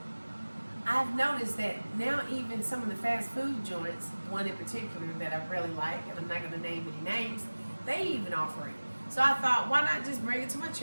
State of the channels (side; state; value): both; inverted; correlation -1.00